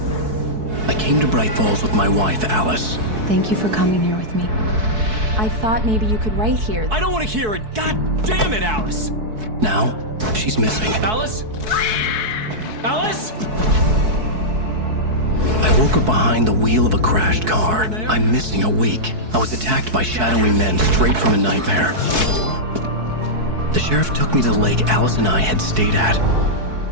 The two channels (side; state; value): left; late; 4.6 ms